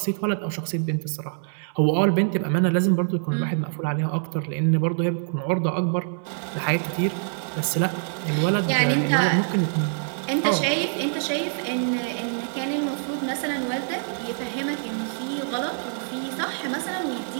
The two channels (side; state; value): left; silent; 62 dB below the other